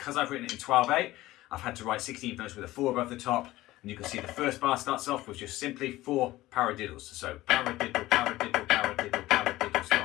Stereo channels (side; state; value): right; quieter; 17.0 dB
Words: I've written it in 12/8, I've had to write 16th notes with a 4 above the top. And you can see the first bar starts off with just simply 4 paradiddles. So paradiddle, paradiddle, paradiddle, paradiddle,